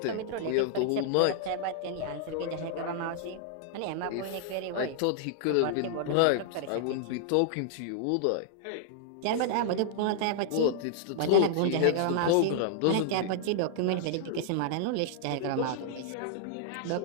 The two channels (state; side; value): different; both; correlation -0.01